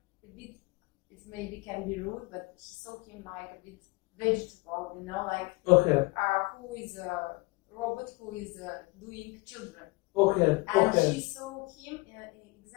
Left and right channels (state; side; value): quieter; right; 25.1 dB